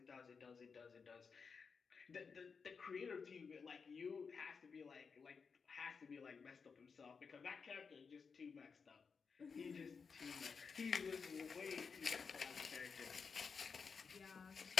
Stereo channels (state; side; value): quieter; right; 5.5 dB